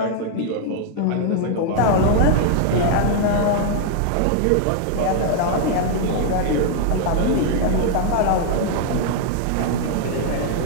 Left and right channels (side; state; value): both; different; correlation 0.00